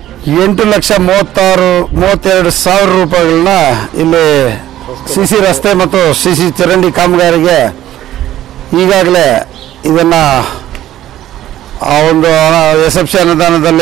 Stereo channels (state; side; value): quieter; left; 13.1 dB